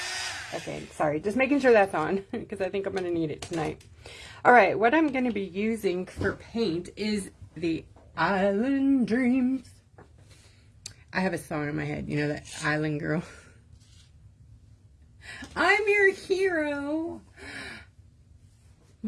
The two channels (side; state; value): both; identical; correlation 1.00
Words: Okay, sorry. Just making sure that's on, because I think I'm going to need it tonight. All right, what I'm going to be using for paint is the Island Dreams. I have a song in my head. You know that Island Girl? I'm your hero.